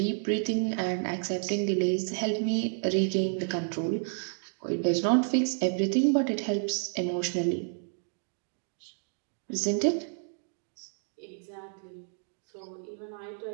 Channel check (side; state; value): left; silent; 57 dB below the other